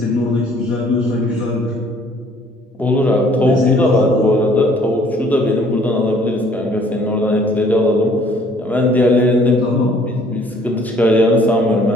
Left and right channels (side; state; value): both; normal; correlation 0.58